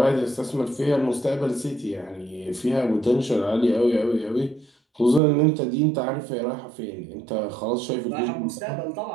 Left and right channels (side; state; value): left; drops out; at 5.2 s